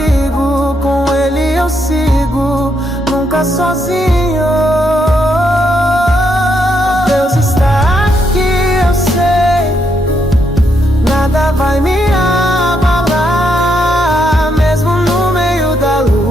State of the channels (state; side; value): normal; both; correlation 0.78